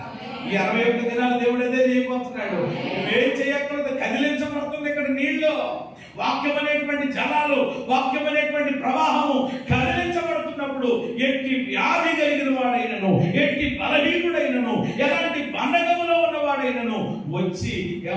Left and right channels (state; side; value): identical; both; correlation 1.00